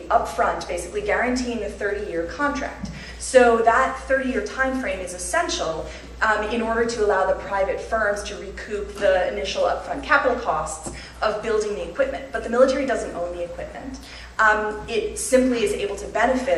up front, basically guaranteeing a 30-year contract. So that 30-year time frame is essential in order to allow the private firms to recoup the initial upfront capital costs of building the equipment. But the military doesn't own the equipment. It simply is able to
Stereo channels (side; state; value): both; identical; correlation 1.00